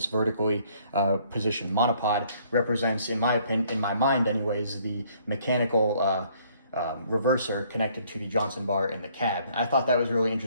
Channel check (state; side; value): inverted; both; correlation -0.63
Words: vertically positioned monopod, represents, in my opinion, in my mind anyways, the mechanical reverser connected to the Johnson bar in the cab. I thought that was a really